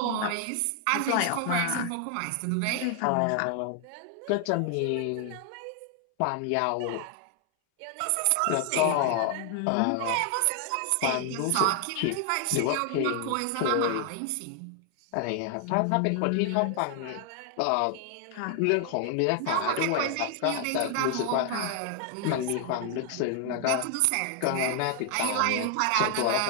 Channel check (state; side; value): different; both; correlation 0.00